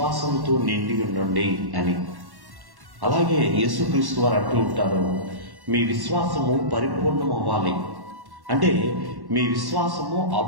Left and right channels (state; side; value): late; left; 1.1 ms